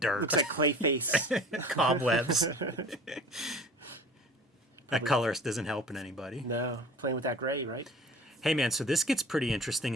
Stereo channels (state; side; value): normal; both; correlation 0.42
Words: Looks like Kayfabe. Cobwebs. That colorist isn't helping anybody. No, playing with that gray, right? Hey, man, so this gets pretty interesting.